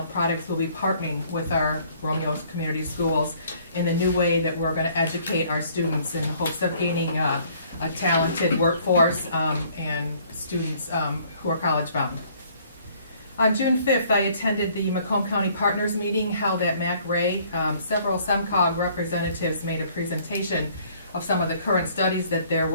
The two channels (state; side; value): inverted; both; correlation -0.60